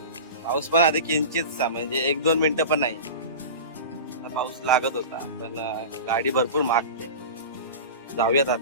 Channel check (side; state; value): both; inverted; correlation -0.31